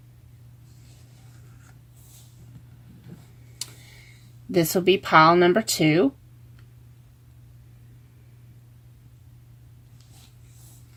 This will be pile number 2.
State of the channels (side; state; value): both; identical; correlation 1.00